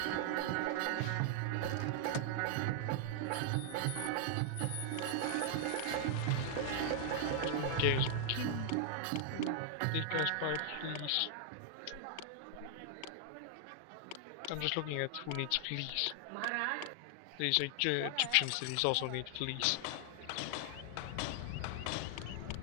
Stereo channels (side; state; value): both; different; correlation 0.00